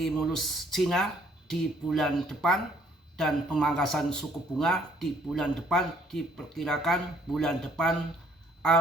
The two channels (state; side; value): normal; both; correlation 0.62